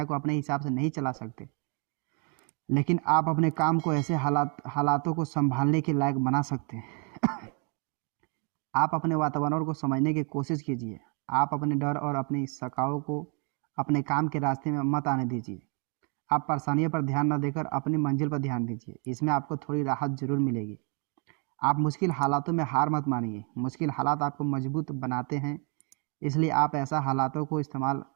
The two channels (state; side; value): quieter; left; 36.8 dB